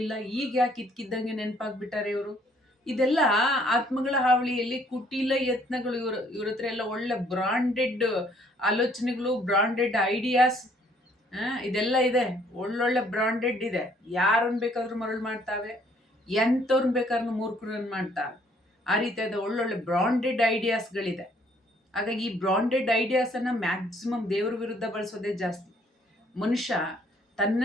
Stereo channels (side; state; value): both; normal; correlation 0.63